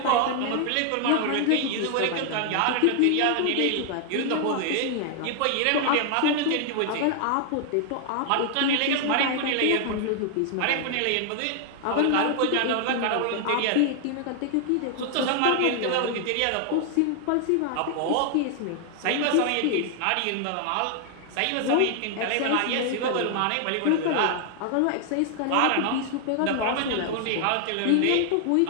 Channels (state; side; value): different; both; correlation 0.00